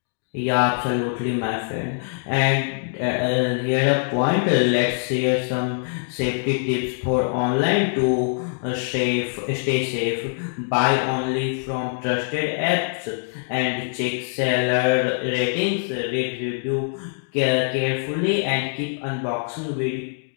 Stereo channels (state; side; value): silent; right; digital silence